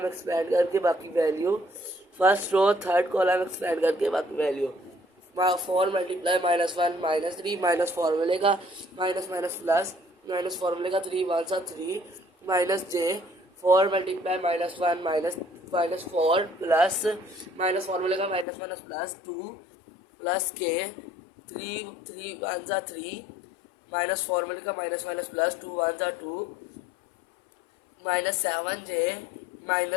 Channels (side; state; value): right; drops out; at 18.4 s